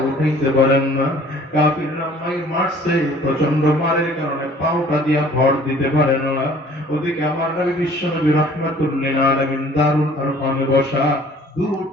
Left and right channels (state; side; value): normal; both; correlation 0.53